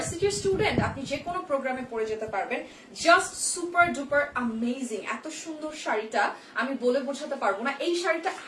স্টুডেন্ট, আপনি যে কোনো প্রোগ্রামে পড়ে যেতে পারবেন। Just super duper amazing. এত সুন্দর শাড়িটা আমি বলে বোঝাতে পারবো না। এই শাড়িটা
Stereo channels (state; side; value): identical; both; correlation 1.00